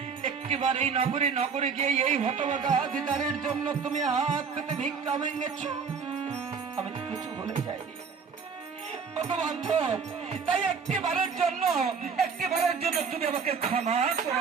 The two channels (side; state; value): left; quieter; 5.8 dB